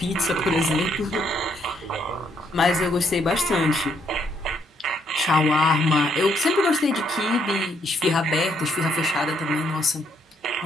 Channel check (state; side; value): normal; both; correlation 0.72